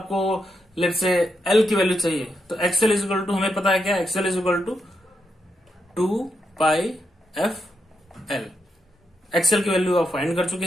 लेट्स से एल की वैल्यू चाहिए, तो एक्सएल इक्वल टू हमें पता है क्या, XL equal to 2 pi f L. XL की वैल्यू आप फाइंड कर चुके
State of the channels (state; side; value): normal; both; correlation 0.83